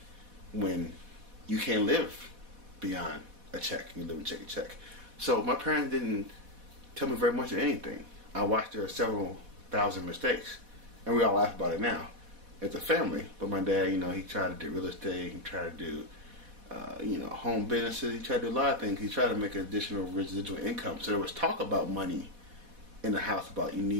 when you can't live beyond a check. You live and check a check. So my parents didn't tell me very much of anything. I watched their several thousand mistakes, and we all laugh about it now as a family. But my dad, he tried to do real estate. He tried to do, home businesses. He tried to do a lot of things. He tried to make an additional residual income. So there was talk about money in the house about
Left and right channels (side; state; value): left; late; 4.1 ms